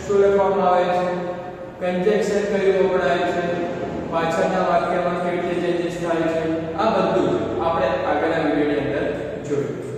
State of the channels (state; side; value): identical; both; correlation 1.00